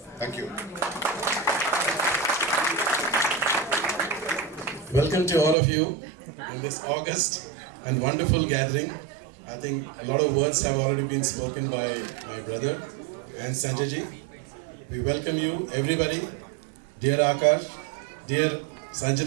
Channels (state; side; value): drops out; left; at 5.6 s